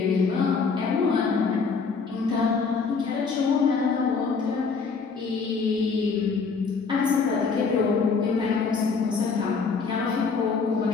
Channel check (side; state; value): right; quieter; 5.0 dB